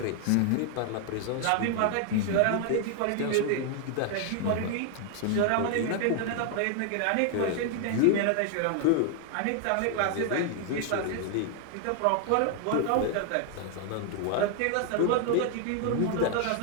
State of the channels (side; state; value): both; different; correlation 0.00